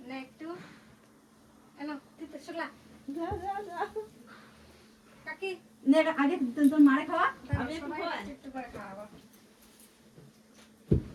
একটু এলো তিতলি শুকলা কাকি নে আগে তোর মারে খাওয়া আমি একটু করে খাওয়াবো।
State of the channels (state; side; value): identical; both; correlation 1.00